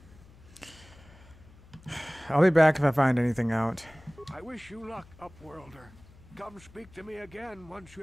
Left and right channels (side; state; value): left; noise; hum, 24 dB below the sound